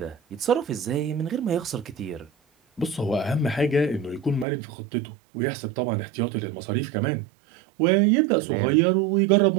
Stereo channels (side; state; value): left; drops out; at 4.5 s